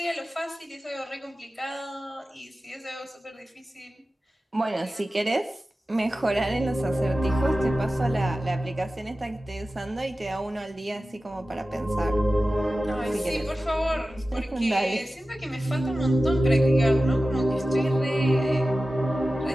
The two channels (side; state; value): both; normal; correlation 0.95